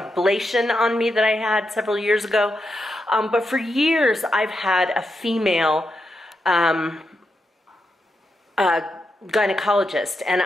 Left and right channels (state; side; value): normal; both; correlation 0.85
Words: on me that I had several years ago. But for years, I've had a female gynecologist, and